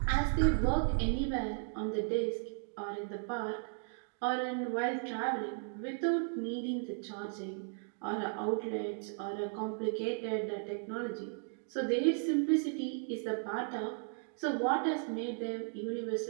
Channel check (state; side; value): silent; left; 54 dB below the other